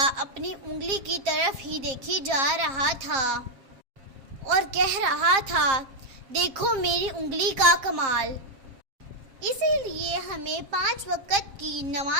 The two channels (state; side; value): late; left; 7.4 ms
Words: اپنی انگلی کی طرف ہی دیکھی جا رہا تھا اور کہہ رہا تھا، دیکھو میری انگلی کا کمال۔ اسی لیے ہمیں 5 وقت کی